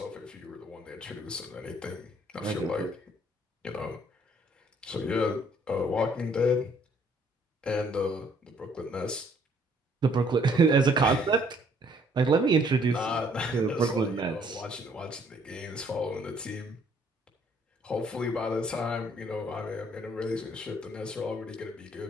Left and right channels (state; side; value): normal; both; correlation 0.63